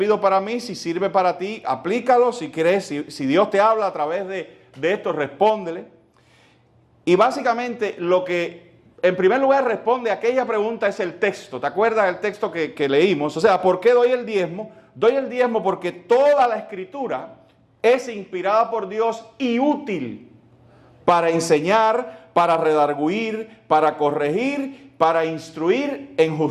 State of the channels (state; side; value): identical; both; correlation 1.00